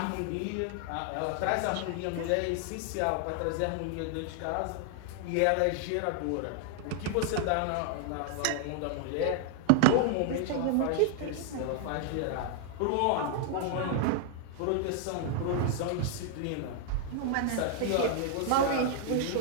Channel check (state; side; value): different; both; correlation 0.00